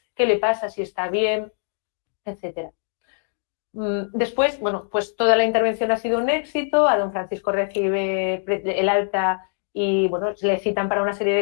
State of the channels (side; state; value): right; silent; digital silence